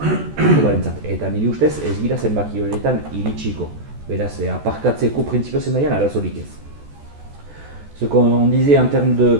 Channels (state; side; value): late; left; 14 ms